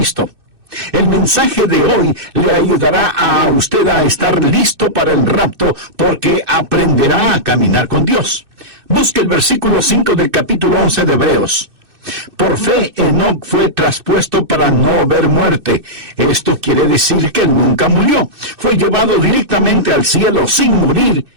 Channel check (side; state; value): left; late; 2.6 ms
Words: El mensaje de hoy le ayudará a usted a estar listo para el rapto porque aprenderá a caminar con Dios. Busque el versículo 5 del capítulo 11 de Hebreos. Por fe, Enoc fue traspuesto para no ver muerte. Esto quiere decir que él nunca murió. Fue llevado directamente al cielo sin morir